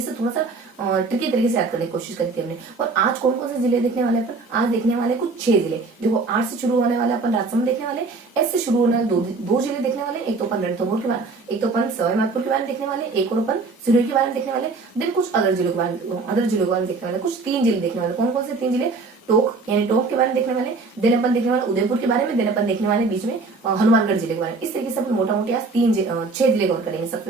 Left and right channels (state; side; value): quieter; left; 4.0 dB